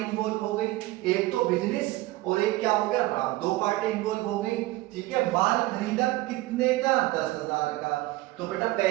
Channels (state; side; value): quieter; left; 18.7 dB